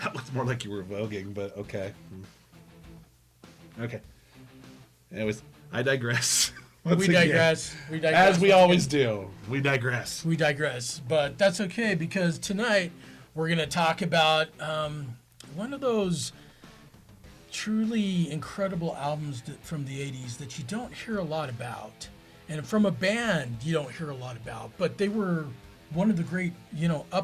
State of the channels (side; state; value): both; identical; correlation 1.00